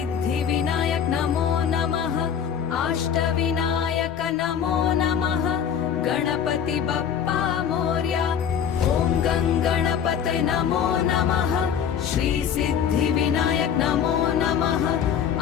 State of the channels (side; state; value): right; quieter; 8.2 dB